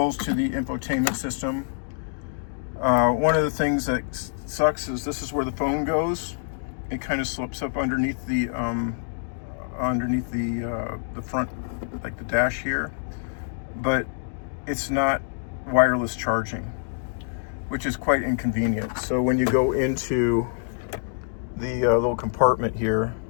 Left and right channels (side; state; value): right; silent; digital silence